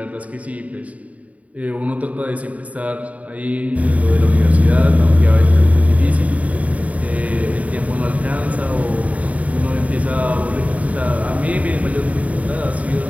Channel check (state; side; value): late; left; 0.069 ms